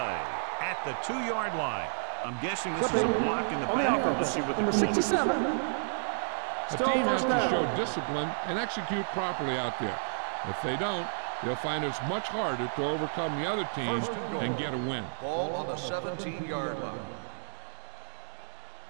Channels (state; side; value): silent; left; digital silence